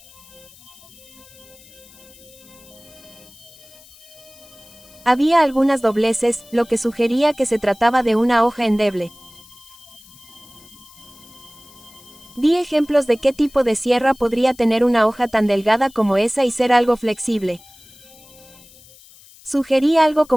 Había algunas dobleces, lo que sugería que se trataba de una hoja endeble. Di ejemplos de qué tipo de sierra podría tener una hoja tan delgada como esa y ser algo flexible. Sugerí algo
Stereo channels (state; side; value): noise; left; hiss, 24 dB below the sound